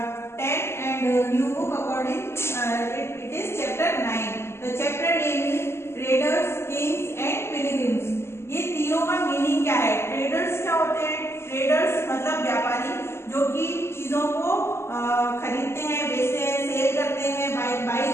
and new book according it is chapter 9. The chapter name is Traders, Kings and Pilgrims. ये तीनों का मीनिंग क्या है? ट्रेडर्स क्या होते हैं? ट्रेडर्स मतलब व्यापारी जो कि चीजों को खरीदते हैं, बेचते हैं, सेल करते हैं, बाई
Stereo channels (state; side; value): late; right; 0.12 ms